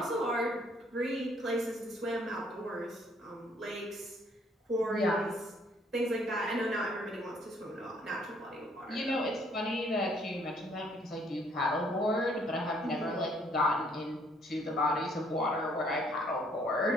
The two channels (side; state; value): both; normal; correlation 0.64